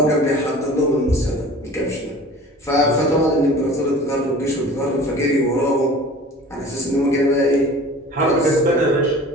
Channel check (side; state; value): both; normal; correlation 0.43